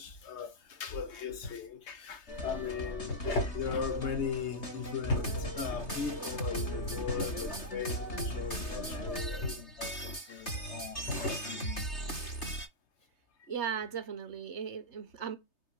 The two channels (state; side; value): late; right; 3.3 ms